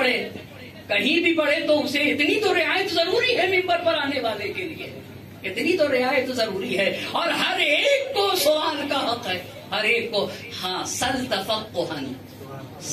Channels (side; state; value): both; identical; correlation 1.00